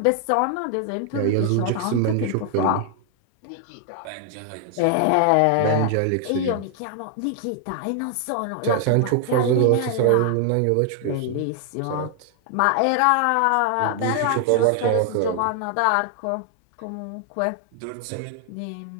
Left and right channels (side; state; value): both; different; correlation 0.00